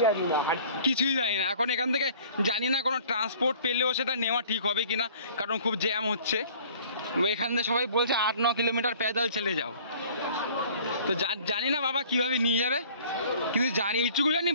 কিছুই জানি না। এখন এখান থেকে জানি না কোনো ট্রান্সপোর্ট পেলেও সেটা নেওয়া ঠিক হবে কিনা, কারণ খুব জ্যাম হচ্ছে। এখান থেকে সবাই বলছে 8-9 কিলোমিটার প্যাদল চলে যাও। তো জানি না বাবা কিভাবে নিয়ে যাবে, কিন্তু জানি এইটুকু জানি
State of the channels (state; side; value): inverted; both; correlation -0.51